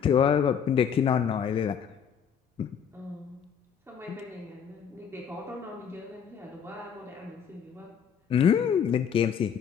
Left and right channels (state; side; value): quieter; right; 7.7 dB